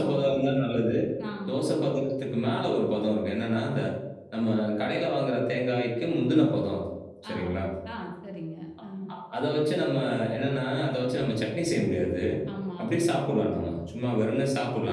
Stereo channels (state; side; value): identical; both; correlation 1.00